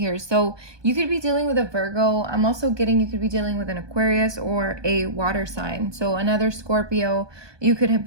So you could be dealing with a Virgo. I'm also getting you could be dealing with an Aquarius or a water sign. So another Scorpio. You could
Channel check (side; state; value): left; late; 1.2 ms